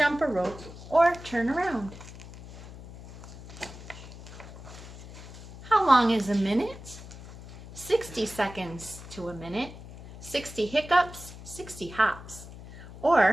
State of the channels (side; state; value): left; noise; hum, 15 dB below the sound